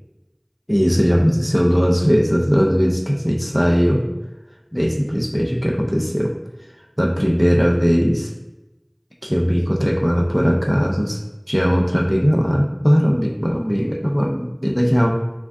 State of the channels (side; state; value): both; identical; correlation 1.00